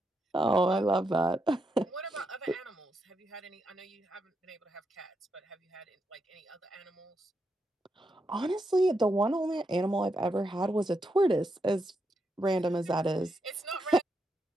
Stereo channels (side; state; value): both; normal; correlation 0.82